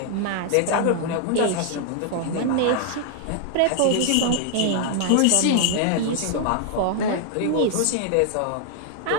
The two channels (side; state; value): both; different; correlation 0.00